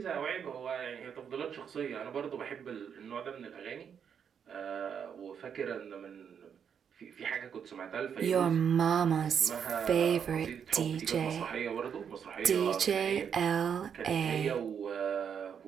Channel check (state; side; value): quieter; left; 7.6 dB